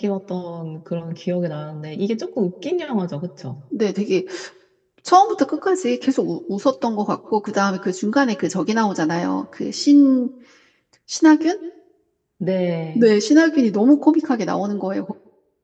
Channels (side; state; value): both; identical; correlation 1.00